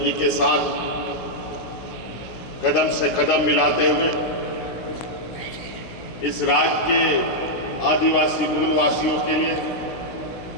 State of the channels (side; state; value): right; late; 16 ms